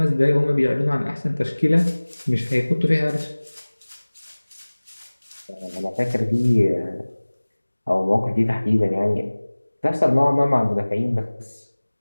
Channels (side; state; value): both; inverted; correlation -1.00